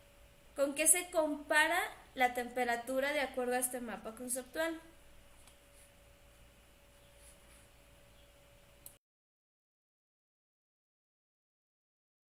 ¿con qué se compara la temperatura de acuerdo a este mapa conceptual?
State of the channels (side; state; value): both; identical; correlation 1.00